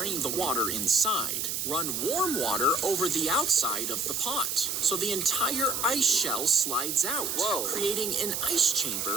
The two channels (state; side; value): noise; right; hiss, 2 dB below the sound